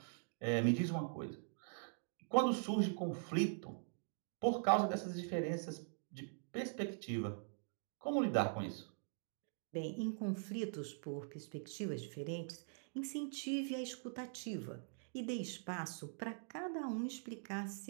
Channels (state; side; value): silent; left; digital silence